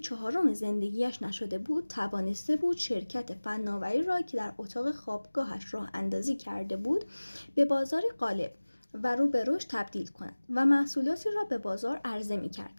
زندگیش نشده بود، توانسته بود شرکت فناوری را که در اتاق خوابگاهش راه اندازی کرده بود به بازاری غالب و رو به رشد تبدیل کند و محصولاتی را به بازار عرضه می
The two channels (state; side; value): inverted; both; correlation -1.00